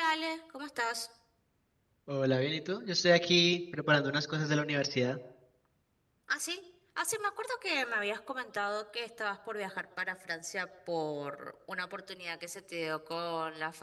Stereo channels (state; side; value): identical; both; correlation 1.00